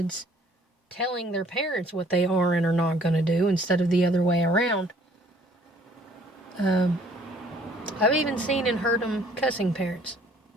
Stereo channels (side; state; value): both; normal; correlation 0.59